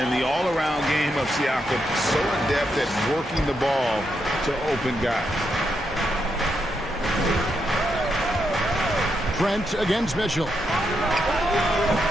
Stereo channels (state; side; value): normal; both; correlation 0.82